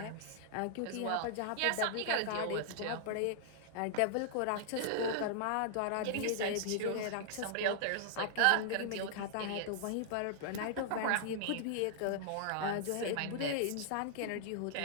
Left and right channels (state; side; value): different; both; correlation -0.01